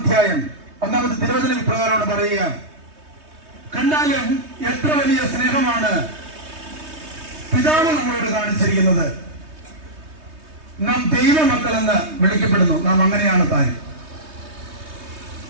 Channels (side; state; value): left; late; 3.2 ms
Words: 1-ാമത്തെ തിരുവചനം ഇപ്രകാരമാണ് പറയുക: കണ്ടാലും എത്ര വലിയ സ്നേഹമാണ് പിതാവ് നമ്മളോട് കാണിച്ചിരിക്കുന്നത്. നാം ദൈവമക്കളെന്ന് വിളിക്കപ്പെടുന്നു. നാം അങ്ങനെയാണ് താൻ.